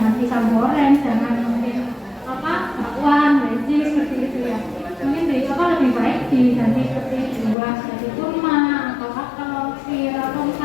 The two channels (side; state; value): right; drops out; at 7.6 s